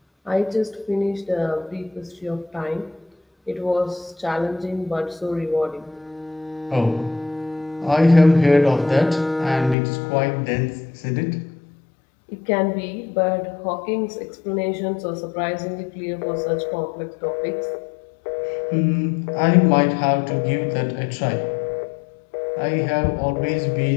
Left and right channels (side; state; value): right; drops out; at 9.8 s